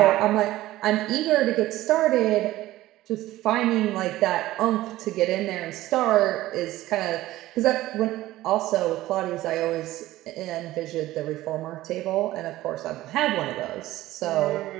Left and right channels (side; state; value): left; quieter; 16.1 dB